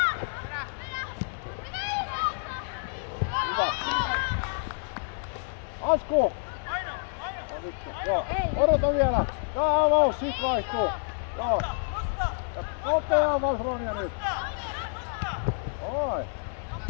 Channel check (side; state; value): right; silent; 56 dB below the other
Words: Hyvä. Asku! Joo, odota vielä. Tää avaus, sit vaihtuu. Joo. Ja nopea avaus Ronja nyt. Oi.